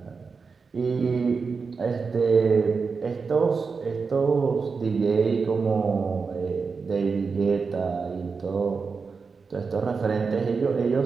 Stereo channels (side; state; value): left; quieter; 5.0 dB